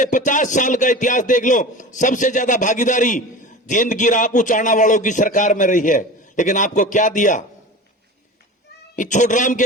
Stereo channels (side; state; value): both; normal; correlation 0.34